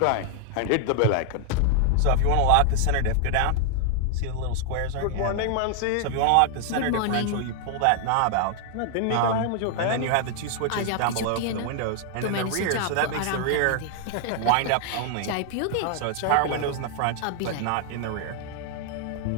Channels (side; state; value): both; different; correlation 0.00